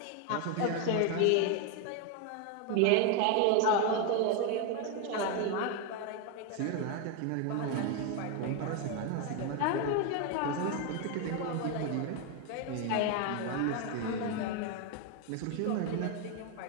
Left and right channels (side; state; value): both; different; correlation 0.01